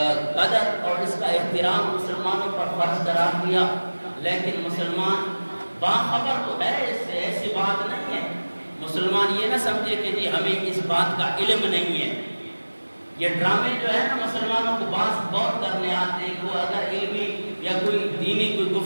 قدر اور اس کا احترام مسلمانوں پر فرض قرار دیا، لیکن مسلمان باخبر تو ہے، اس سے ایسی بات نہیں ہے۔ مسلمان یہ نہ سمجھے کہ جی ہمیں اس بات کا علم نہیں ہے۔ یہ ڈرامے جو ہے نا مسلمانوں کو بہت کرنے آتے ہیں، وہ اگر علمی یا کوئی دینی کوئی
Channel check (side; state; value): both; inverted; correlation -1.00